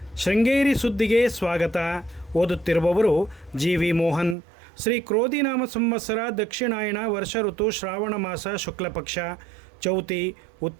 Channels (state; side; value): drops out; left; at 4.4 s